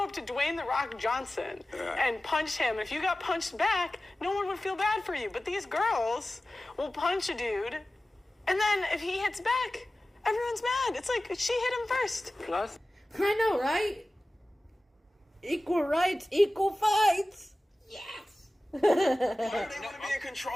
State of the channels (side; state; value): both; normal; correlation 0.96